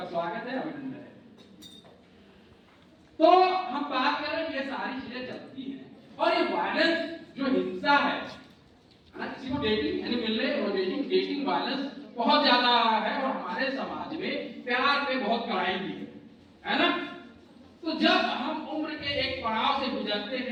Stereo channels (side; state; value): both; identical; correlation 1.00